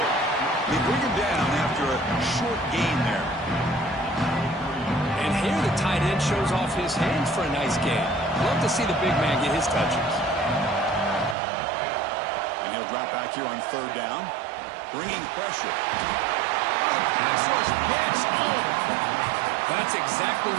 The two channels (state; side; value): drops out; left; at 11.4 s